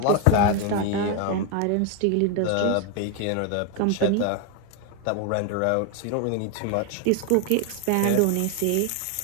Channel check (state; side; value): different; both; correlation 0.01